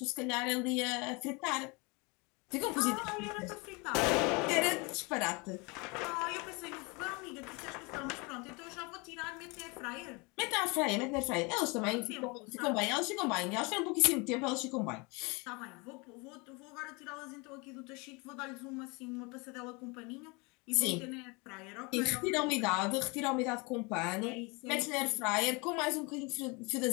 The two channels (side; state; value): right; quieter; 28.4 dB